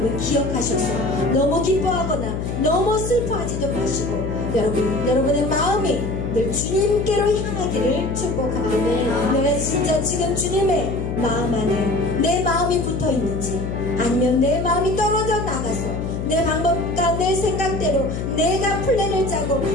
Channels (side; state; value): left; noise; hum, 4 dB below the sound